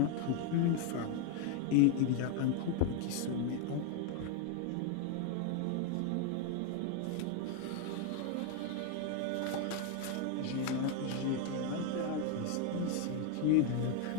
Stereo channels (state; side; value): different; both; correlation 0.01